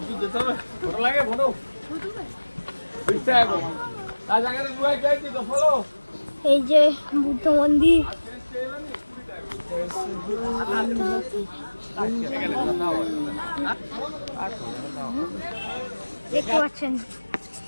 এই যে বুদ্ধ মন্দির। দেখতে পাচ্ছেন,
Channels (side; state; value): both; inverted; correlation -1.00